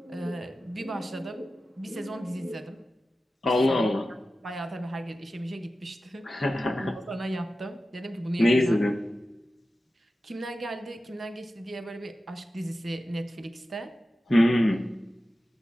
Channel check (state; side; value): normal; both; correlation 0.93